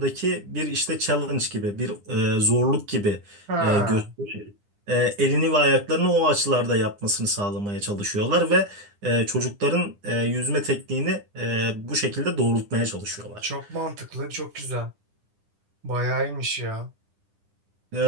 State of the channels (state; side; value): late; left; 9.9 ms